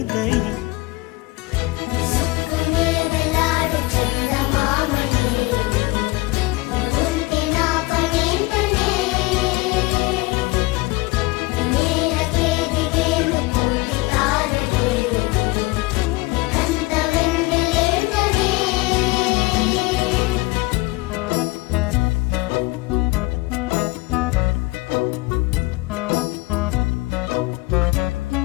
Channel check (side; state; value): right; quieter; 22.2 dB